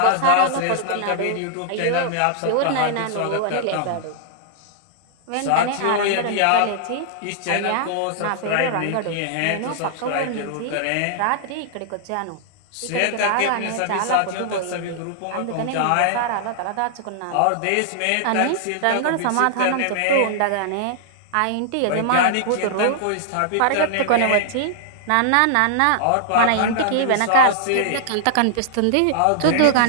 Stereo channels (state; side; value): different; both; correlation -0.01